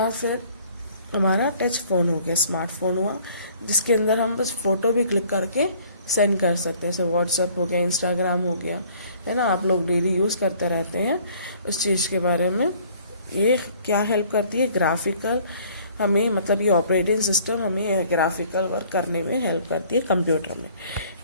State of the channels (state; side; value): inverted; both; correlation -0.56